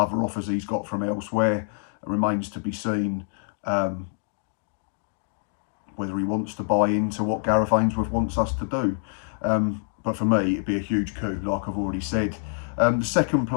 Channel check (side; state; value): right; silent; digital silence